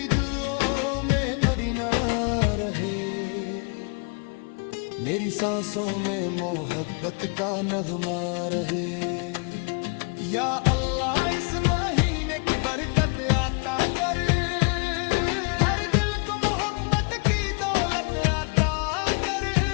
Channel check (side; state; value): right; quieter; 35.6 dB